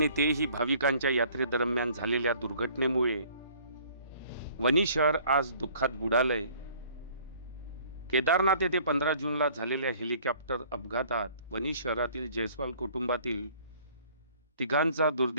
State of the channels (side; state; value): both; inverted; correlation -0.55